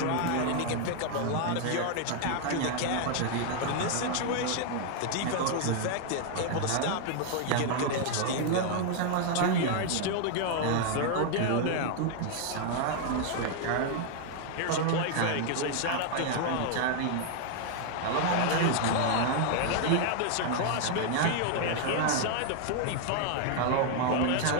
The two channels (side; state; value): both; different; correlation 0.00